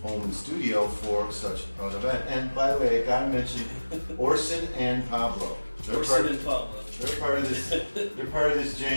home and studio for such an event. And by the way, I gotta mention Orson and Pablo. They're part of this. They're part of this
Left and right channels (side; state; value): both; inverted; correlation -1.00